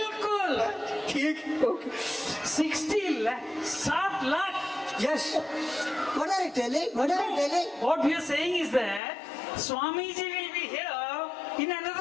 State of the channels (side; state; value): right; drops out; at 9.0 s